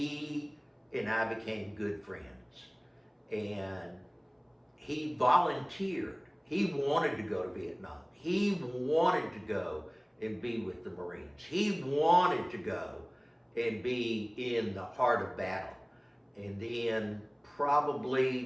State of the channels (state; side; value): identical; both; correlation 1.00